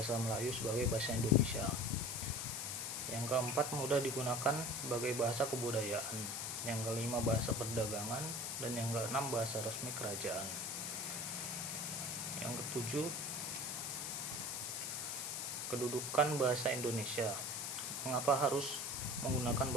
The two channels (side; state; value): left; noise; hiss, 3 dB below the sound